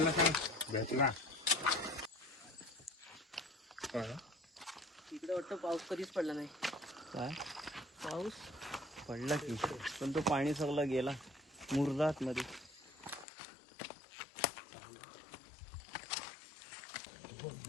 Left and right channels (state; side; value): drops out; right; at 13.2 s